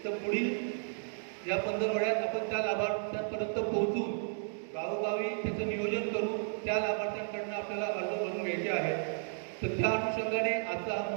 तर पुढील या 15 आठवड्यात आपण त्या लाभार्थ्यांपर्यंत पोहोचून गावोगावी त्याचं नियोजन करून त्या लाभार्थ्यांकडनं आपल्याला अर्ज भरून घ्यायचे आहेत. तर त्या अनुषंगाने आजचा हा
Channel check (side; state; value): left; silent; digital silence